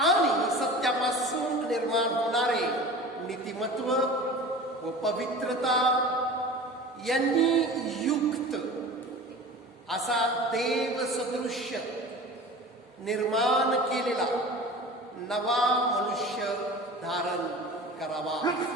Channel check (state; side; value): normal; both; correlation 0.38